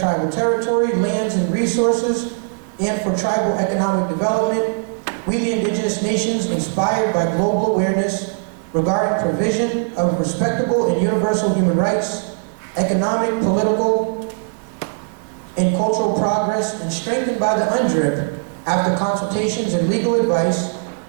territory, lands and resources, and for tribal economic development, we the Indigenous nations, inspired by global awareness regarding provision of respectable and universal human rights, economic, political, and cultural progress, and strengthened by the UNDRIP after consultations and legal advice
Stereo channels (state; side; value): silent; left; digital silence